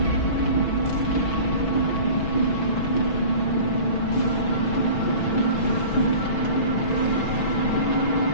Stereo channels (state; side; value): late; right; 6.1 ms